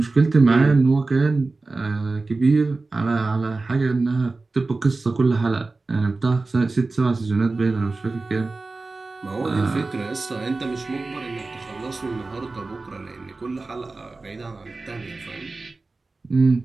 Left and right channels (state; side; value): quieter; left; 3.5 dB